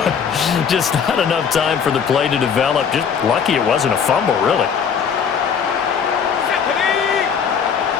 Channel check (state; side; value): quieter; right; 7.0 dB